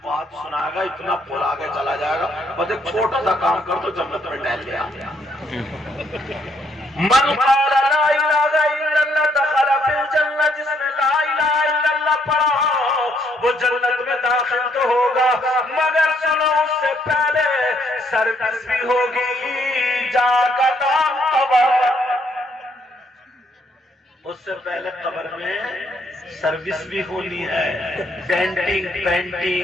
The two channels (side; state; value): both; normal; correlation 0.71